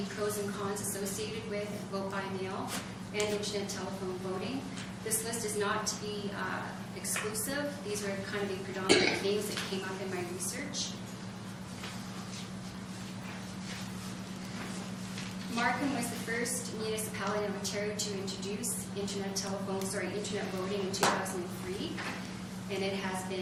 pros and cons associated with vote by mail and internet telephone voting. This list is not to be exclusive. These are kind of the predominant things that came up in my research. Markham was the first municipality in Ontario to introduce internet voting in 2003, and it has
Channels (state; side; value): identical; both; correlation 1.00